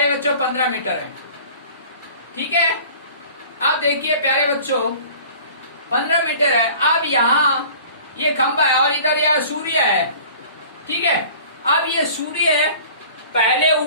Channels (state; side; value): inverted; both; correlation -0.46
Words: बच्चों 15 मीटर है, ठीक है। अब देखिए प्यारे बच्चों 15 मीटर है। अब यहाँ ये खंबा है और इधर यह सूर्य है, ठीक है। अब ये सूर्य है पहले